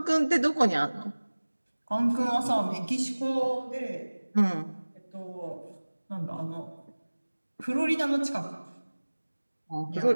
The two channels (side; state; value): both; inverted; correlation -1.00